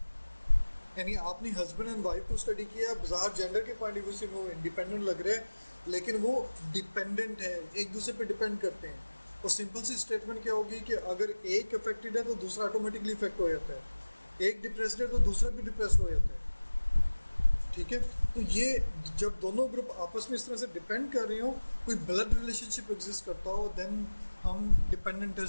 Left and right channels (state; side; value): inverted; both; correlation -1.00